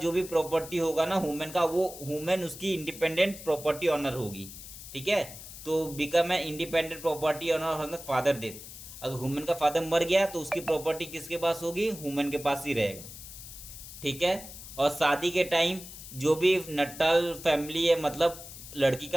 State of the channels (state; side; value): noise; left; hiss, 14 dB below the sound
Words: भी प्रॉपर्टी होगा ना वुमेन का, वो वुमेन उसकी इंडिपेंडेंट प्रॉपर्टी ऑनर होगी। ठीक है, तो become a independent property owner father death. अगर वुमेन का फादर मर गया तो उसकी प्रॉपर्टी किसके पास होगी, वुमेन के पास ही रहेगा। ठीक है, और शादी के टाइम जो भी नटाल फैमिली है, मतलब लड़की